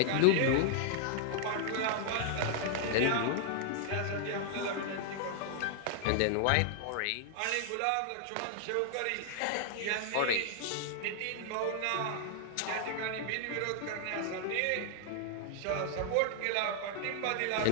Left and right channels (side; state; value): both; different; correlation 0.00